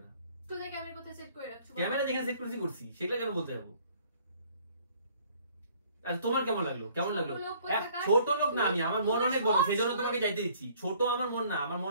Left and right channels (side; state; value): both; inverted; correlation -0.58